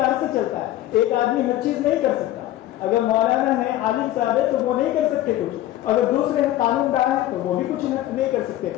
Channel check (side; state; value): right; quieter; 14.1 dB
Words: سے چلتا ہے۔ ایک آدمی ہر چیز نہیں کر سکتا، اگر مولانا ہے، عالم صاحب ہے تو وہ نہیں کر سکتے کچھ، اگر دوسرے ہیں قانون دان ہے تو وہ بھی کچھ نہیں کر سکتے۔